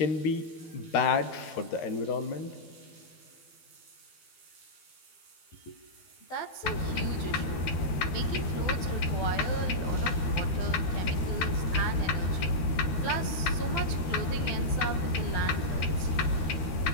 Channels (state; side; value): late; right; 12 ms